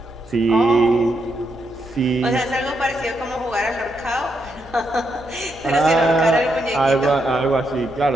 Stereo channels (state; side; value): normal; both; correlation 0.80